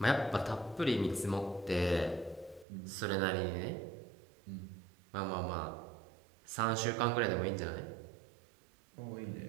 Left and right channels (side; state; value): left; drops out; at 2.7 s